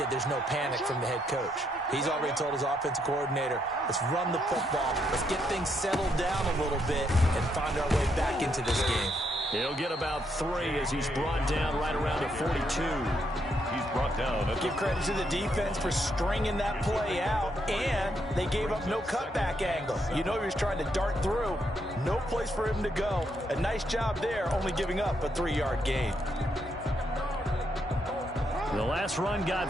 there's no panic from the head coach. He's already told his offensive coordinator, let's run the football, let's get things settled down a little bit and find our way back into this game. He'll get about 3 as he's brought down right around the 42. He's brought down. Give credit to the defense for stringing that play out, and they gave up no cutback angle. You know he was trying to dart through. No place for him to go. A nice job there, only giving up a 3-yard gain. The last run got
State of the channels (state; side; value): normal; both; correlation 0.76